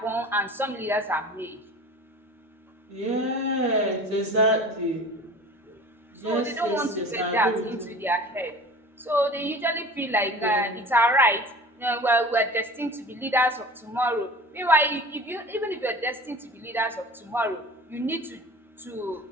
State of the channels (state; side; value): normal; both; correlation 0.40